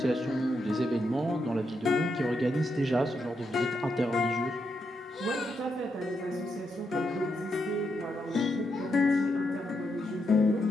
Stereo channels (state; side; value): normal; both; correlation 0.82